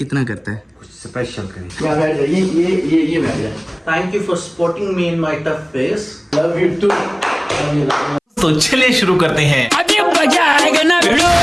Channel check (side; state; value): both; identical; correlation 1.00